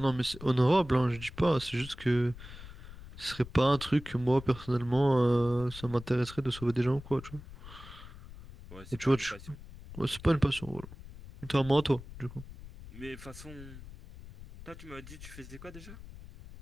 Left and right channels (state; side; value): noise; left; rumble, 15 dB below the sound